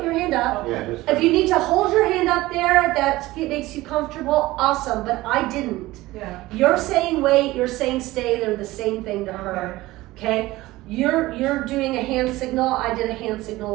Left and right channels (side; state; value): left; quieter; 18.4 dB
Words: your hand up. Yeah, just. If you need to hold your hand up there, that makes you comfortable, awesome, but I didn't. Yeah. You're saying wait, you're saying stay, they're the same thing to her, okay? You're doing a hand signal, I did a hand